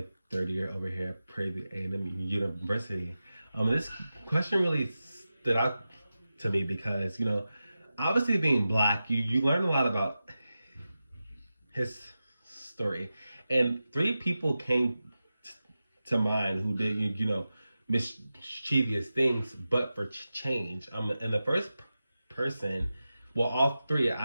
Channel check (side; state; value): both; inverted; correlation -0.93